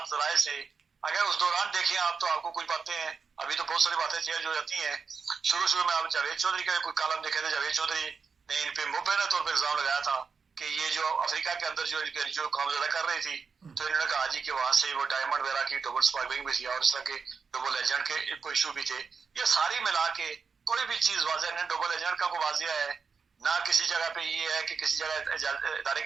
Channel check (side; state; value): left; quieter; 5.4 dB